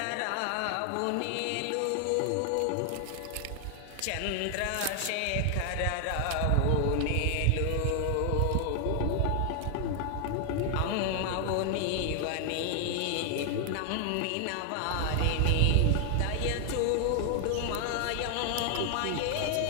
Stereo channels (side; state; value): both; different; correlation 0.00